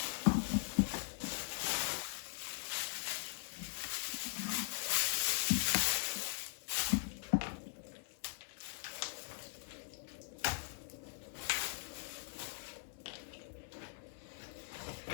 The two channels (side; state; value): right; silent; 51 dB below the other